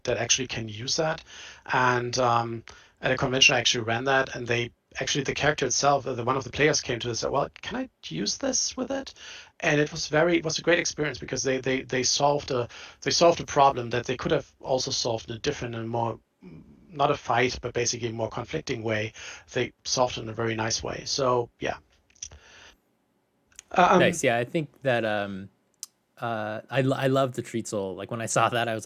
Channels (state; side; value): identical; both; correlation 1.00